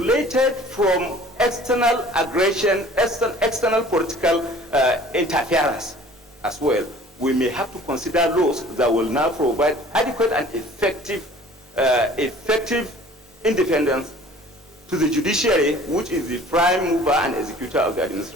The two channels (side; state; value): both; normal; correlation 0.49